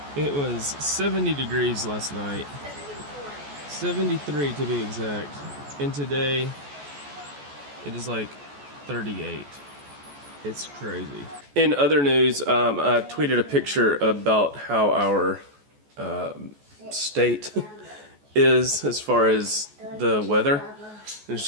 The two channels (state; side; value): late; left; 14 ms